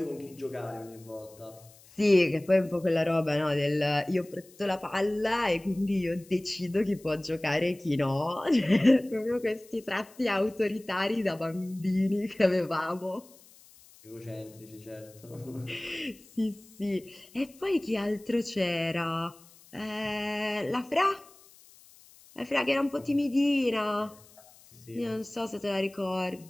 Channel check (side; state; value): left; noise; hiss, 25 dB below the sound